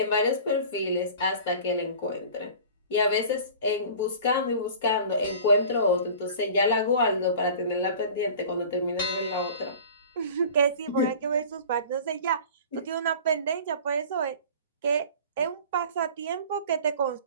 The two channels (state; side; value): inverted; both; correlation -0.42